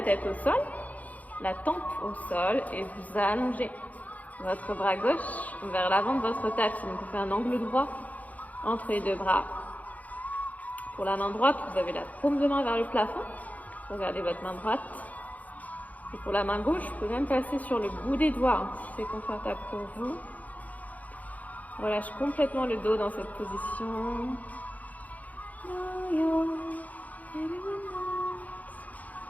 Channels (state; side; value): late; right; 0.076 ms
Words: tête au sol, la tempe au sol et vous allongez votre bras gauche vers l'avant de votre tapis. Donc vous faites un angle droit entre les deux bras. Pour la main droite, vous avez la paume de main vers le plafond. Regardez votre main droite. Et pour la main gauche, vous pouvez même passer sur le bout des doigts si c'est confortable pour vous. On relâche complètement le dos dans cette position.